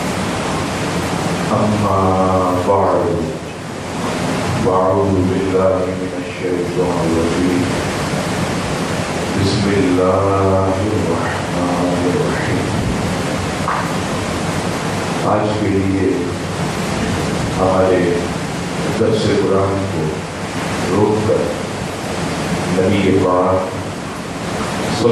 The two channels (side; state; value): both; identical; correlation 1.00